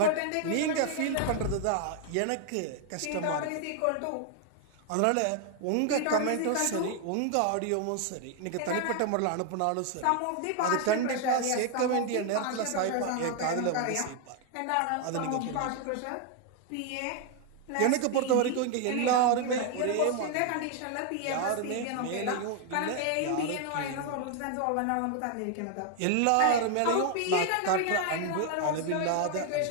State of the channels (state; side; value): different; both; correlation 0.00